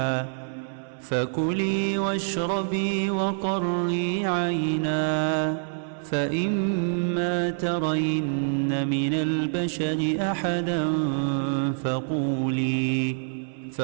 فكلي واشربي وقري عينا فإما ترين من البشر أحدا فقولي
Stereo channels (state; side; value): silent; left; 61 dB below the other